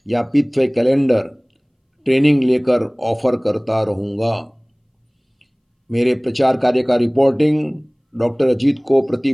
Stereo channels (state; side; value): identical; both; correlation 1.00